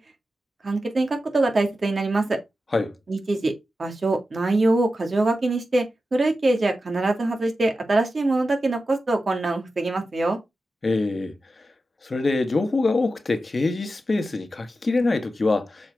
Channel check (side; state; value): both; normal; correlation 0.91